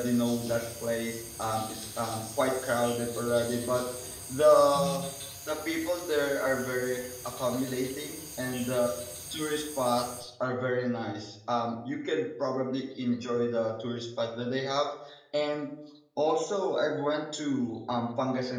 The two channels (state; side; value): identical; both; correlation 1.00